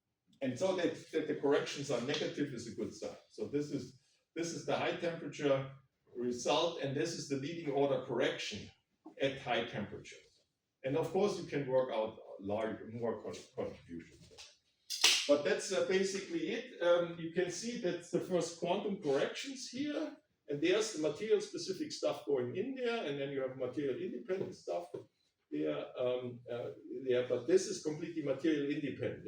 And so that the corrections are negative is a good sign. So this is the high temperature result, and this is the leading order correction at high temperatures. And of course, you can work out more contributions. But that's basically it. You can see that's the first quantum corrections here, and there's the material-specific stuff going in there, and then you have material-independent stuff there. But this is completely material-independent.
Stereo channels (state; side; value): identical; both; correlation 1.00